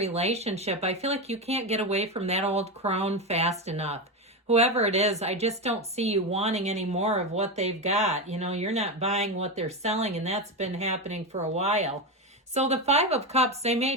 I feel like you can't get away from that old crone fast enough. Whoever it is, I just don't see you wanting any more of what they've got. You know, you're not buying what they're selling, and that's been happening for a while. So the 5 of Cups, they may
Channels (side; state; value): both; normal; correlation 0.15